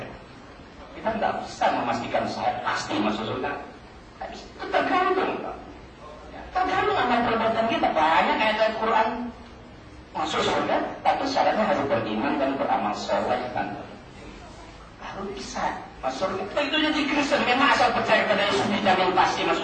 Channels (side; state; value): both; identical; correlation 1.00